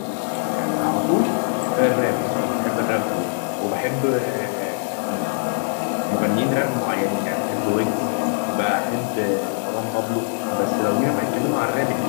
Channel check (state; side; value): silent; right; digital silence